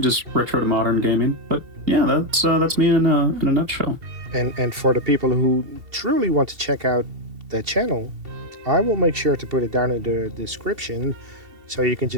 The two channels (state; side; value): late; left; 2.7 ms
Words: just retro to modern gaming. But yeah, that's me in a nutshell. And for the people who truly want to check out that channel, I will make sure to put it down in the description so you can